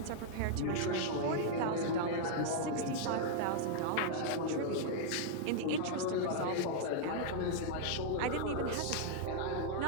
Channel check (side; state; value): both; different; correlation -0.01